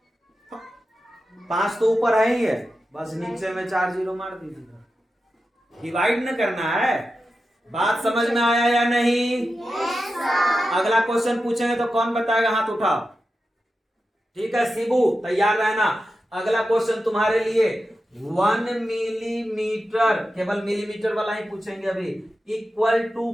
5 तो ऊपर है ही है, बस नीचे में 4 जीरो मार दीजिए, डिवाइड न करना है। बात समझ में आया या नहीं। अगला क्वेश्चन पूछेंगे तो कौन बताएगा, हाथ उठाओ, ठीक है शिबू तैयार रहना। अगला क्वेश्चन तुम्हारे लिए 1 मिलीमीटर, केवल मिलीमीटर वाला ही पूछेंगे अभी, इक्वल टू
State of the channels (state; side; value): normal; both; correlation 0.91